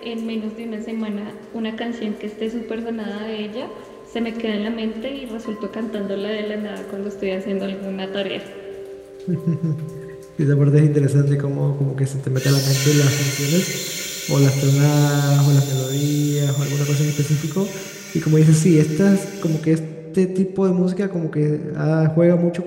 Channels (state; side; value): identical; both; correlation 1.00